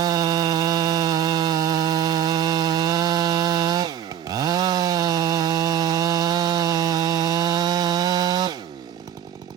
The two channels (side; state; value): left; quieter; 9.5 dB